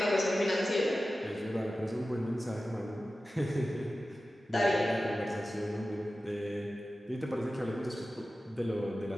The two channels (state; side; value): normal; both; correlation 0.95